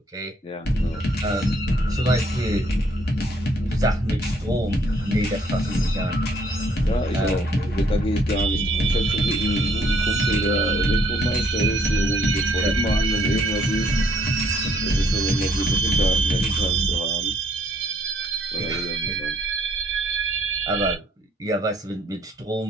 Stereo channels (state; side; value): normal; both; correlation 0.66